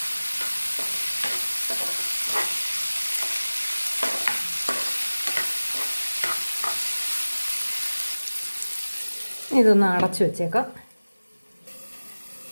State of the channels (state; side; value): inverted; both; correlation -1.00